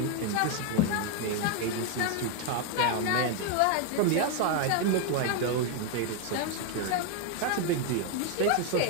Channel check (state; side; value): different; both; correlation 0.01